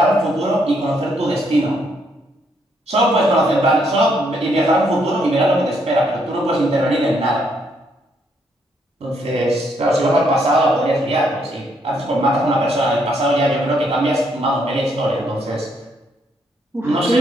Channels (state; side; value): normal; both; correlation 0.72